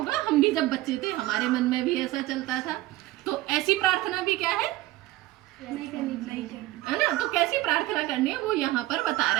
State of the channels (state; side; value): quieter; left; 17.1 dB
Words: हम भी जब बच्चे थे हमारे मन में भी ऐसा चलता था। तो ऐसी प्रार्थना भी क्या है ना, तो कैसी प्रार्थना करनी है वो यहाँ पर बता